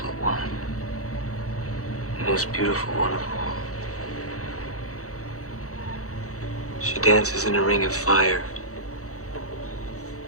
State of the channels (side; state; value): right; late; 0.65 ms